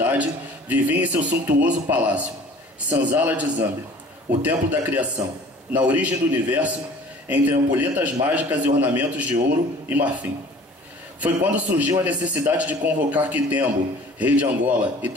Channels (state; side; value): normal; both; correlation 0.48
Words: vivia em seu suntuoso palácio, Sanzala de Zambi, o templo da criação, na origem do universo, entre ampulhetas mágicas e ornamentos de ouro e marfim. Foi quando surgiu a necessidade de convocar Kitembo, rei de Angola, e